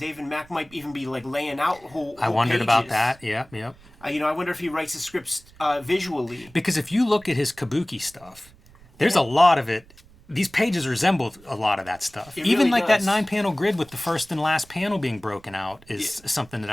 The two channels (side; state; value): right; noise; rumble, 25 dB below the sound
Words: Mack might even be like laying out whole I wondered pages. about that. Yep. I wonder if he writes the scripts visually. Because if you look at his kabuki stuff, there's a lot of it. These pages resemble a lot of that stuff. It Even really like does. that 9-panel grid with the first and last panel being broken out is something that